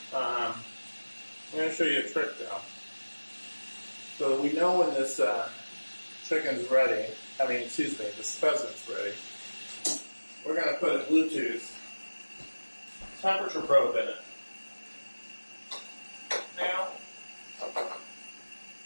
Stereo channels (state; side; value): inverted; both; correlation -1.00